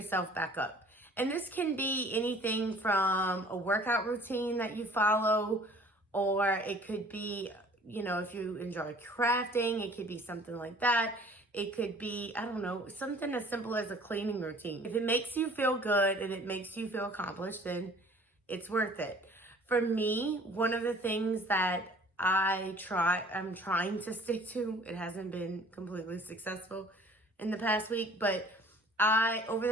back up. And this can be anything from a workout routine that you follow, or it could be, if you enjoy crafting, it could be something like that. It could be, I don't know, something as simple as a cleaning routine. If it makes you feel good and it makes you feel accomplished, then it's worth it. For me, one of the things that I'm trying to stick to, it hasn't been completely successful in the past week, but over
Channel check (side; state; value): both; normal; correlation 0.51